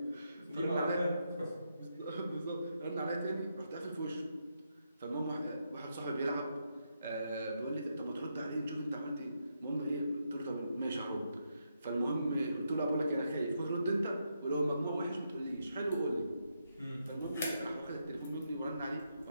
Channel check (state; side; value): inverted; both; correlation -0.81